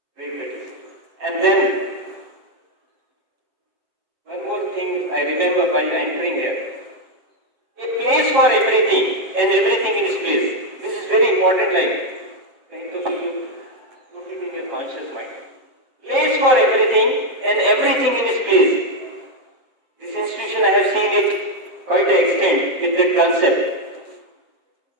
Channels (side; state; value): left; late; 7.8 ms